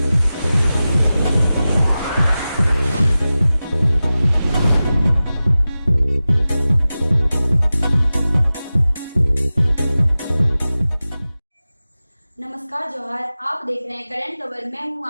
नमस्कार, जोहार। आप देख रहे हैं करंट खबर। मैं हूं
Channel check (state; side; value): inverted; both; correlation -0.95